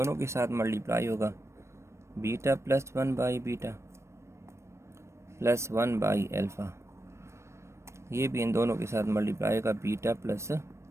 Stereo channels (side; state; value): left; late; 0.13 ms